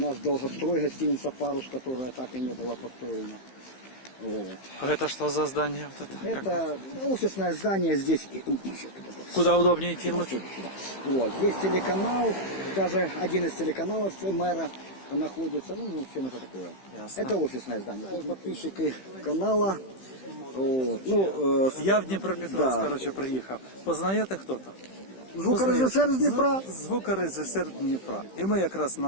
долгострой, гостиница «Парус», которая так и не была построена. Вот. А это что за здание? Вот это? Это офисное здание здесь. Куда удобнее идти Вот лучше? сюда, сюда. Вот, здесь телеканал, даже один из телеканалов мэра находится. Ну, в общем, это такое. Ясно. Это офисное здание. Это подписчики канала. Вот. Ну, Я в Дніпропетровськ, Да. коротше, приїхав. Познаєте хто-то? звукорежисер з Дніпра. Звукорежисер Дніпра. І ми якраз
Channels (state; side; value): late; right; 15 ms